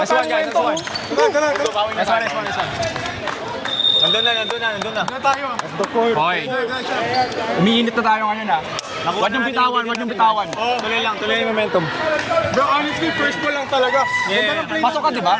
Nice tayo one, guys. momento. Nice one. Nandun na. Okay. Umiinit na tayo ngayon ha. Huwag niyong bitawan. Tuloy yung momentum. Bro, honestly, first ball lang talaga. Yeah. Pasok ka, di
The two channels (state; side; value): identical; both; correlation 1.00